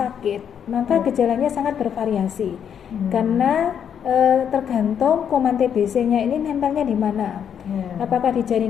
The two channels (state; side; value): quieter; right; 8.3 dB